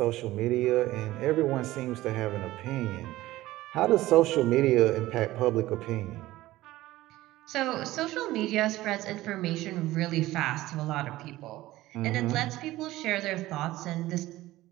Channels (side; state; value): left; quieter; 16.7 dB